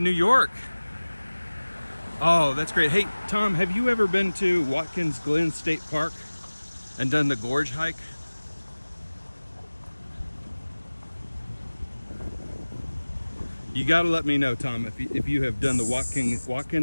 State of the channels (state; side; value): inverted; both; correlation -1.00